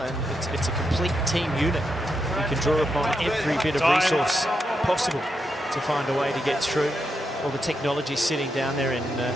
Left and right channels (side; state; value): both; normal; correlation 0.83